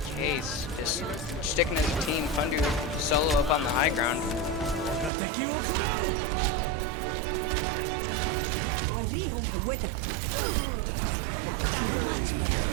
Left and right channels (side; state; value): left; drops out; at 5.1 s